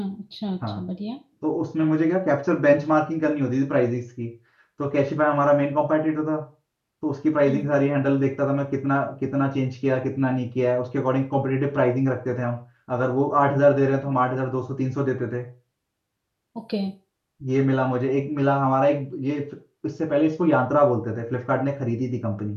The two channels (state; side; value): identical; both; correlation 1.00